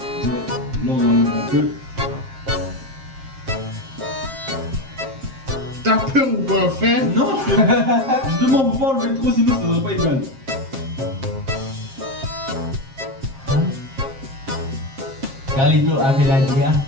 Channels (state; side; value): late; left; 7.5 ms